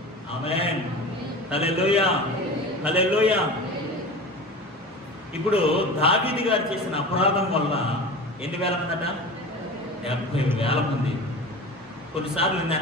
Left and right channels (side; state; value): both; normal; correlation 0.33